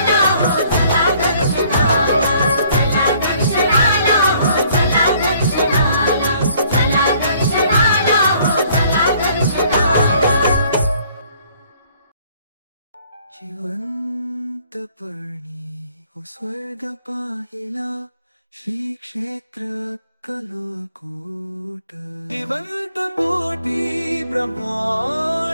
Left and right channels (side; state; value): both; inverted; correlation -0.60